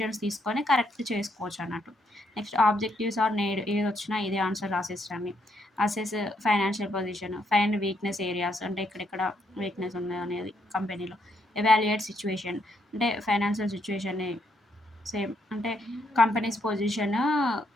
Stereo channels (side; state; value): both; normal; correlation 0.75